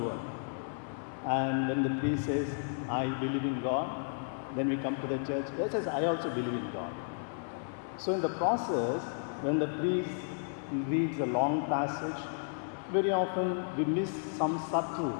And when the priest says, I believe in God, then we come to the church. He says, I also believe in God. So in the process, when the priest reads a long passage, very often we miss some subtle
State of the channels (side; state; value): right; silent; 56 dB below the other